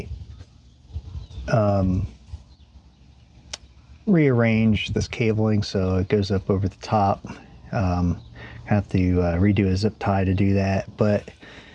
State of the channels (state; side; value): identical; both; correlation 1.00